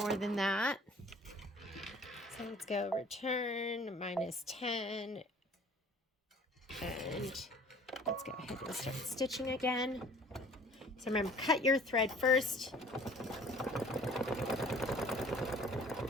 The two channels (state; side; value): normal; both; correlation 0.51